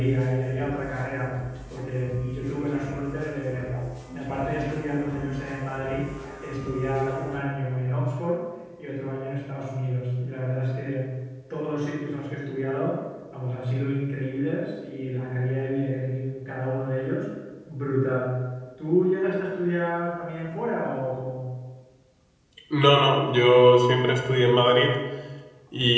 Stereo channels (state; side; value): identical; both; correlation 1.00